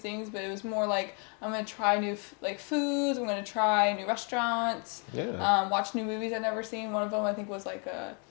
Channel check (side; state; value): right; quieter; 37.8 dB